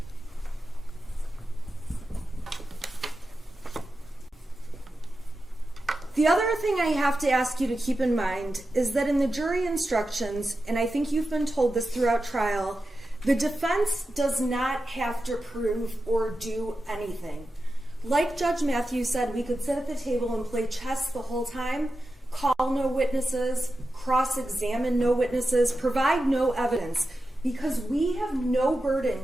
The other thing I have to ask you to keep in mind is that in the jury instructions, and I think you've been told this throughout trial, the defense does not have to prove or do anything. Like Judge Matthews said, we could sit at the table and play chess the whole time, call no witnesses, cross-examine no witnesses, provide no evidence, because we have no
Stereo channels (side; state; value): both; normal; correlation 0.91